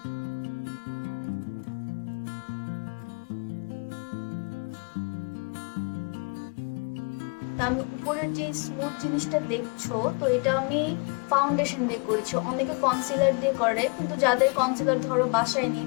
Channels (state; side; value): quieter; right; 34.2 dB